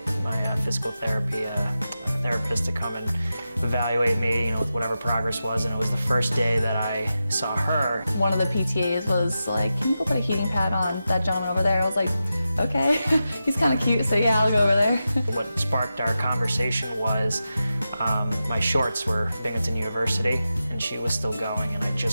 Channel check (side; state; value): both; inverted; correlation -0.91